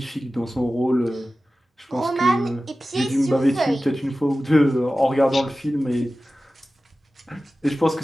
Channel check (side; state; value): both; normal; correlation 0.95